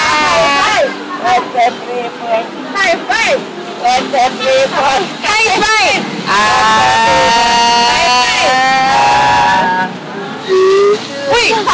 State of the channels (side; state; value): both; identical; correlation 1.00